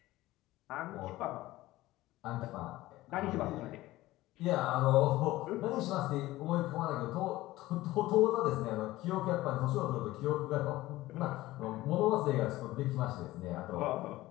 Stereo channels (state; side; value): quieter; right; 17.3 dB